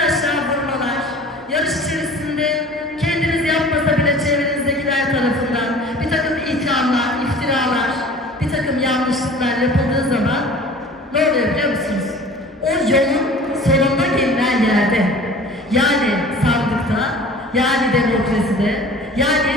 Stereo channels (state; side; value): normal; both; correlation 0.44